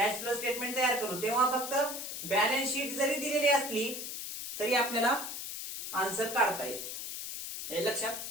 फ्लो स्टेटमेंट तयार करू, तेव्हा फक्त बॅलन्स शीट जरी दिलेली असली तरी आपल्याला आन्सर काढता येते. हे लक्षात.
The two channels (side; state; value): left; noise; hiss, 6 dB below the sound